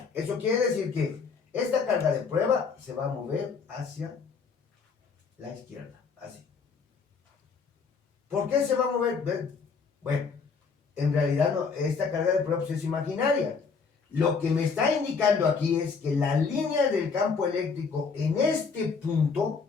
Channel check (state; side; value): quieter; right; 5.2 dB